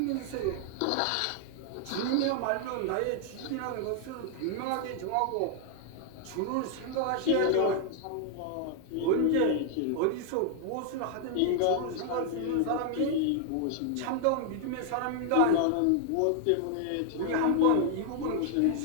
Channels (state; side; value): different; both; correlation 0.00